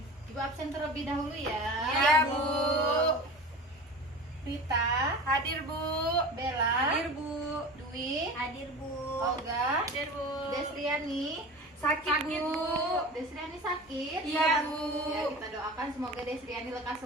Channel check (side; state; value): both; normal; correlation 0.34